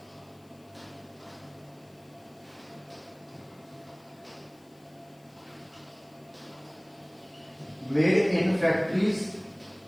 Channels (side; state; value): left; noise; hiss, 30 dB below the sound